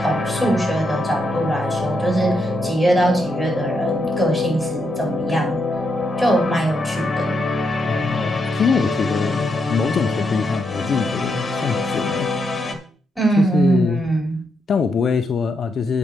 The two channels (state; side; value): normal; both; correlation 0.81